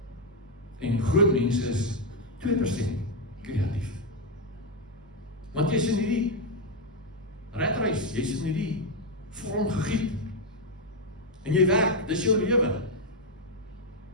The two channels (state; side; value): normal; both; correlation 0.03